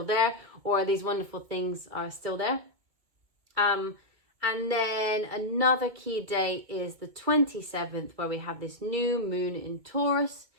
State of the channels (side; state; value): left; late; 2.0 ms